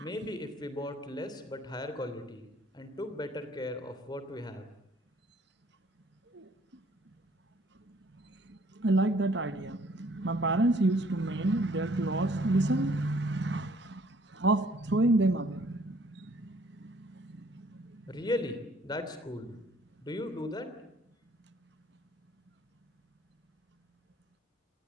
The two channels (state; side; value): normal; both; correlation 0.60